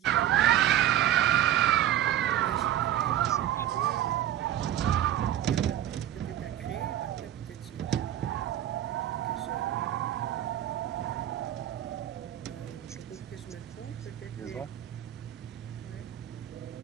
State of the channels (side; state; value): left; quieter; 11.9 dB